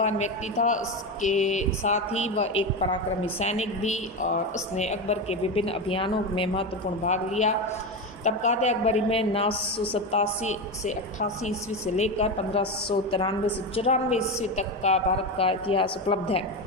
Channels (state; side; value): normal; both; correlation 0.17